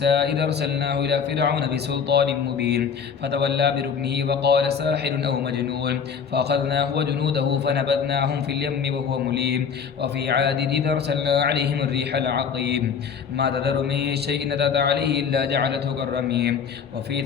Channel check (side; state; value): right; quieter; 6.6 dB